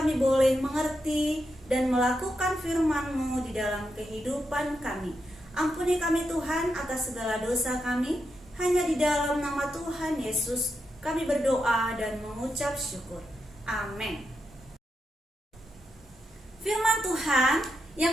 boleh mengerti dan melakukan firman-Mu di dalam kehidupan kami. Ampuni kami Tuhan atas segala dosa kami. Hanya di dalam nama Tuhan Yesus kami berdoa dan mengucap syukur. Amin. Firman Tuhan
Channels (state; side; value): normal; both; correlation 0.85